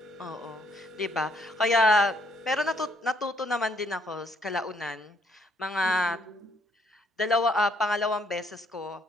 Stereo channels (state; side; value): normal; both; correlation 0.69